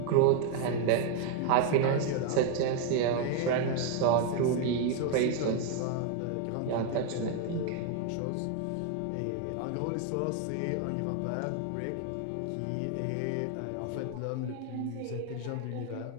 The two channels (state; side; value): different; both; correlation 0.01